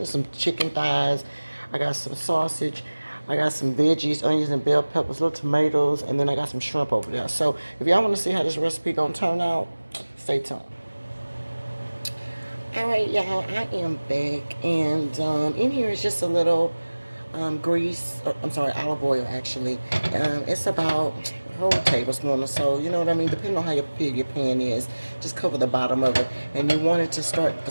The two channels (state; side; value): inverted; both; correlation -1.00